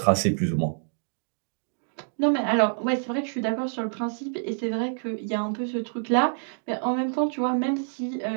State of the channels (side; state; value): left; silent; digital silence